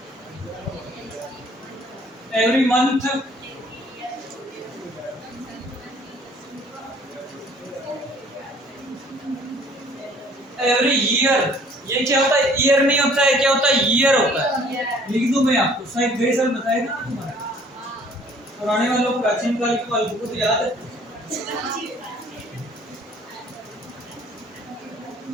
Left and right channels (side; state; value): both; normal; correlation 0.56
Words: every month every year। ये क्या होता है? ईयर नहीं होता है, क्या होता है? ईयर होता है। लिख दूं मैं आपको, शायद गए साल बताया था तुम्हारा, पुराने वालों को प्राचीन काल की बात को तो याद है।